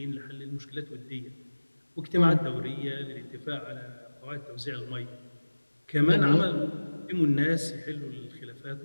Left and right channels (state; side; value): inverted; both; correlation -1.00